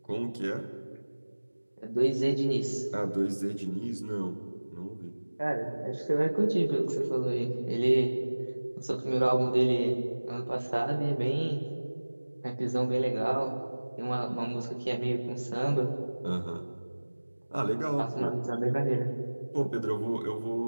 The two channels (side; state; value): both; inverted; correlation -1.00